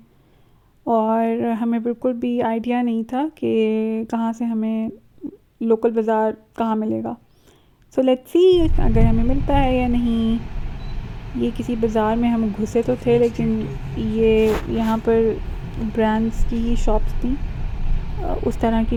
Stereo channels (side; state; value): both; identical; correlation 1.00